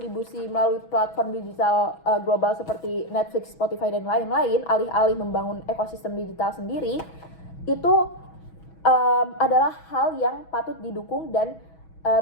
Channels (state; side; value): late; right; 6.2 ms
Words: melalui platform digital global seperti Netflix, Spotify, dan lain-lain, alih-alih membangun ekosistem digital sendiri, itu adalah hal yang patut didukung dan